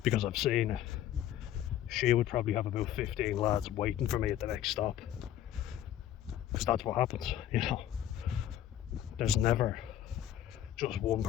because I've seen it, she would probably have about 15 lads waiting for me at the next stop, because that's what happens, you know. There's never just one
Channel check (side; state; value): right; quieter; 11.8 dB